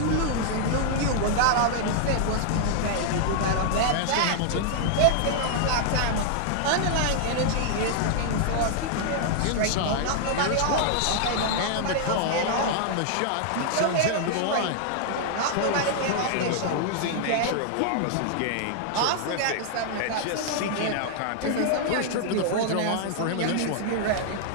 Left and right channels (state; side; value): different; both; correlation -0.01